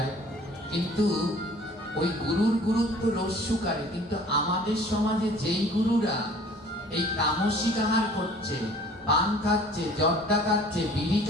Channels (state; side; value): normal; both; correlation 0.51